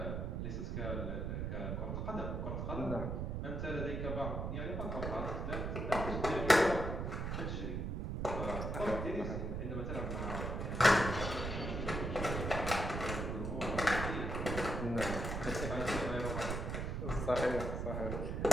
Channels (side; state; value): right; noise; rumble, 2 dB below the sound